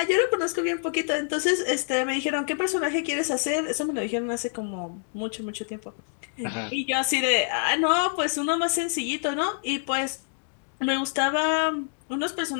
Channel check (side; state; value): right; silent; digital silence